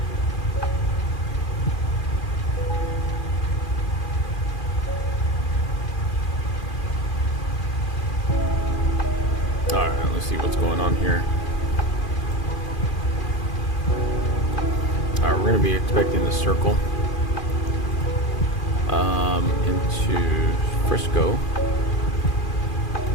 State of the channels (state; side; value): late; right; 2.4 ms